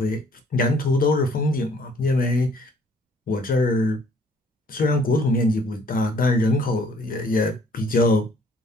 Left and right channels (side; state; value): both; normal; correlation 0.60